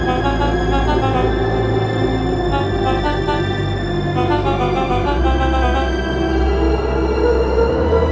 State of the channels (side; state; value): both; identical; correlation 1.00